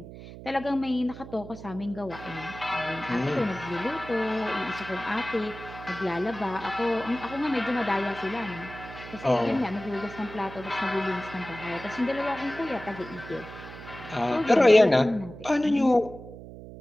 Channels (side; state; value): right; noise; hum, 14 dB below the sound